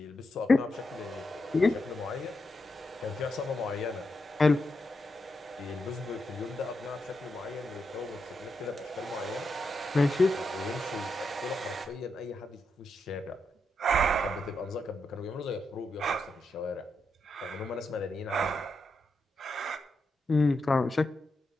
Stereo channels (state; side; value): normal; both; correlation 0.84